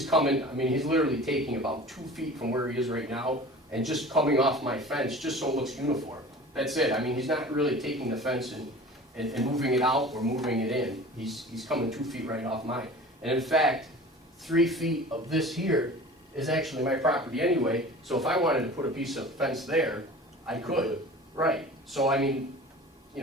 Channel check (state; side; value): normal; both; correlation 0.40